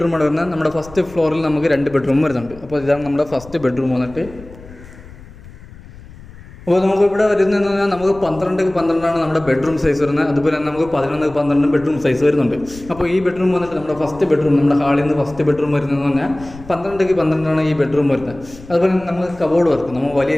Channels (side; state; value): left; noise; rumble, 19 dB below the sound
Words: വരുന്നത്. നമ്മുടെ ഫസ്റ്റ് ഫ്ലോറിൽ നമുക്ക് 2 ബെഡ്റൂം വരുന്നുണ്ട്. അപ്പോൾ ഇതാണ് നമ്മുടെ ഫസ്റ്റ് ബെഡ്റൂം വന്നിട്ട്. അപ്പോൾ നമുക്ക് ഇവിടെ വരുന്നതെന്ന് പറഞ്ഞാൽ നമുക്ക് 12x12 നമ്മുടെ ബെഡ്റൂം സൈസ് വരുന്നത്. അതുപോലെ തന്നെ നമുക്ക് 11x12 ബെഡ്റൂം സൈസ് വരുന്നുണ്ട്. അപ്പോൾ ഈ ബെഡ്റൂം വന്നിട്ട് നമ്മുടെ ഫസ്റ്റ് ബെഡ്റൂം, നമ്മുടെ ഹാളിൽ നിന്ന് ഫസ്റ്റ് ബെഡ്റൂം വരുന്നതെന്ന് പറഞ്ഞാൽ 12x12 ഈ ബെഡ്റൂം വരുന്നത്. അതുപോലെ തന്നെ നമുക്ക് കബോർഡ് വർക്ക്, നമുക്ക് വലിയ